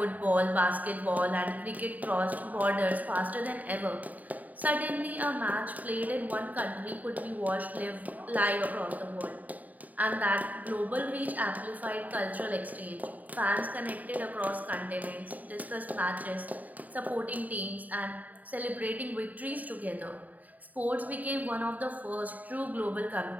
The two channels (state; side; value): late; left; 0.076 ms